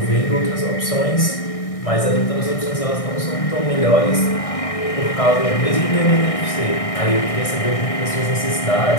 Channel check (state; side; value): late; right; 1.6 ms